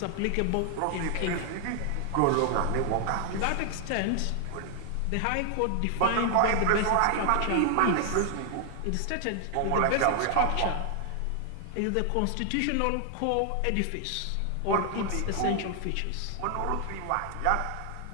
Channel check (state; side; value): different; both; correlation 0.00